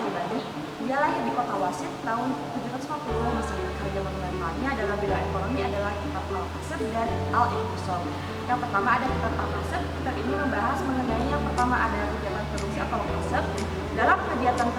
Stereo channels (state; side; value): identical; both; correlation 1.00